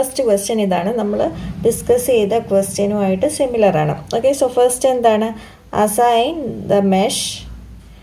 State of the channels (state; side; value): identical; both; correlation 1.00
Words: ക്വസ്റ്റ്യൻ ഇതാണ്. നമ്മൾ ഡിസ്കസ് ചെയ്ത ക്വസ്റ്റ്യനുമായിട്ട് സിമിലർ ആണ്. ഓക്കെ, സോ ഫസ്റ്റ് എന്താണ്? Assign the mesh